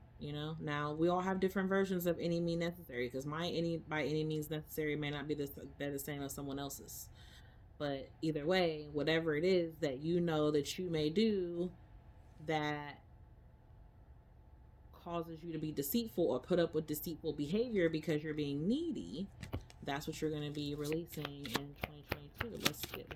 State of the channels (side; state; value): both; identical; correlation 1.00